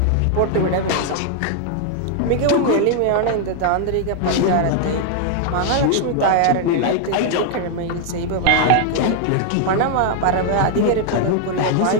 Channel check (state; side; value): different; both; correlation 0.00